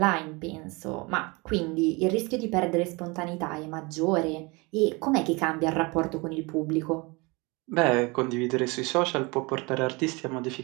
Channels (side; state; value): left; quieter; 26.5 dB